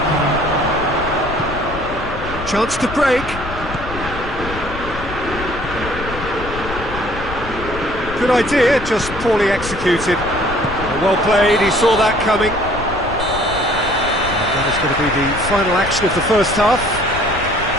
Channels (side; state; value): left; noise; rumble, 10 dB below the sound